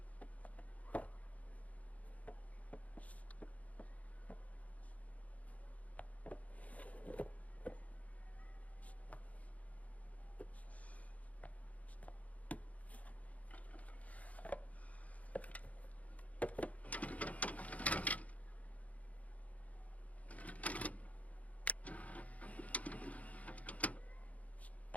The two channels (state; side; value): late; right; 0.069 ms